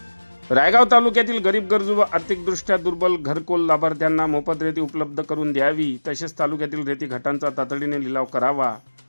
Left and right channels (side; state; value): both; inverted; correlation -1.00